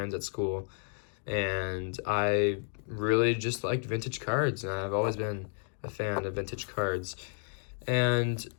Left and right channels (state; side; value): silent; right; digital silence